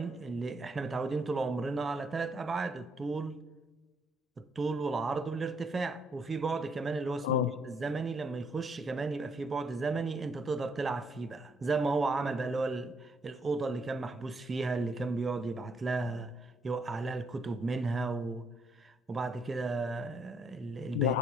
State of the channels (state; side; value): normal; both; correlation 0.72